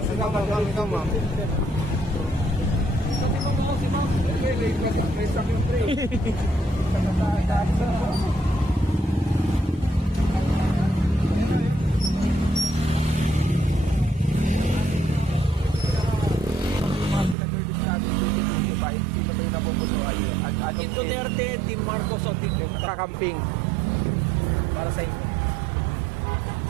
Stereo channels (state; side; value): drops out; left; at 17.4 s